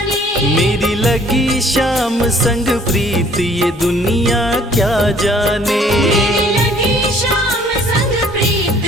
मेरी लगी शाम संग प्रीत ये दुनिया क्या जाने। मेरी लगी शाम संग प्रीत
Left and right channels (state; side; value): normal; both; correlation 0.57